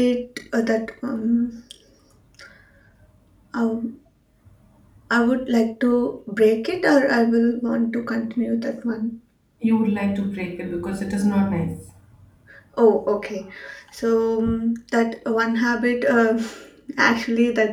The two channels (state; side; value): identical; both; correlation 1.00